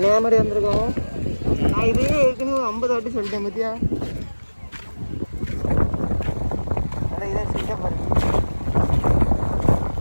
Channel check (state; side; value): inverted; both; correlation -1.00